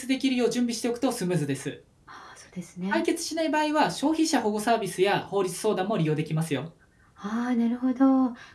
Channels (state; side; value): identical; both; correlation 1.00